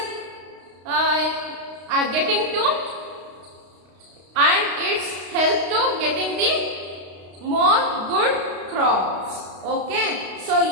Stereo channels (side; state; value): left; late; 32 ms